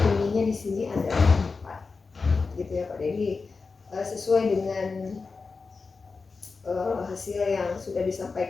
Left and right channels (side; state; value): right; quieter; 4.4 dB